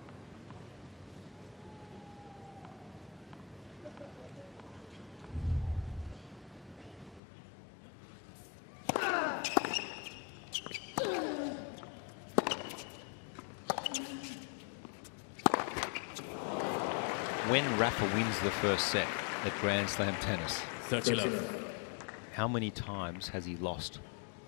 When Rafa wins the first set at Grand Slam tennis, 30-love. how many times has he lost?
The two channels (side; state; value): right; drops out; at 7.2 s